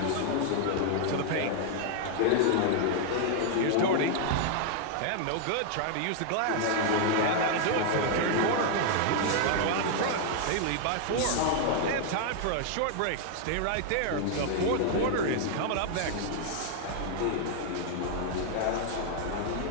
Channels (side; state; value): both; different; correlation 0.00